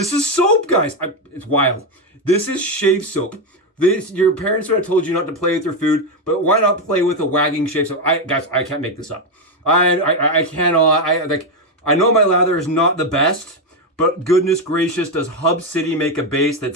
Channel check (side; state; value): both; normal; correlation 0.07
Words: is soap, guys. It's wild. This is shave soap. Your parents would have told you not to play with your food, but why not play with a wagging shave soap? Guys, I can't make this up. I cannot. I know my lather is not the best, but goodness gracious, does Hub City make a base